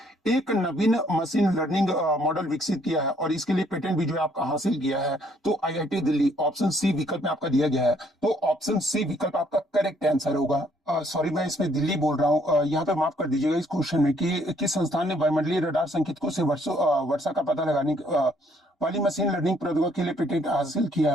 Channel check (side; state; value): both; normal; correlation 0.66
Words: एक नवीन मशीन लर्निंग मॉडल विकसित किया है और इसके लिए पेटेंट भी जो है आपका हासिल किया है। तो आईआईटी दिल्ली ऑप्शन सी विकल्प में आपका दिया गया है। तो ऑप्शन सी विकल्प आपका करेक्ट आंसर होगा। सॉरी मैं इसमें दिल्ली बोल रहा हूँ, यहाँ पे माफ कर दीजिएगा इस क्वेश्चन में कि किस संस्थान ने वायुमंडलीय रडार संकेतकों से वर्षा का पता लगाने वाली मशीन लर्निंग प्रौद्योगिकी के लिए पेटेंट हासिल किया